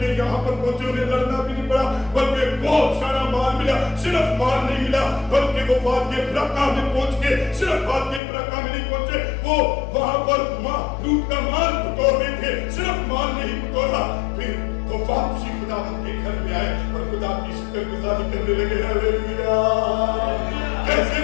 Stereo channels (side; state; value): right; drops out; at 8.2 s